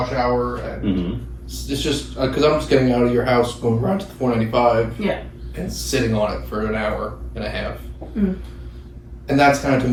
hour and it's just because I'm just getting out of your house, going right to the 495, and sitting on it for an hour and a half. And that's kind of to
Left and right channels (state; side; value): identical; both; correlation 1.00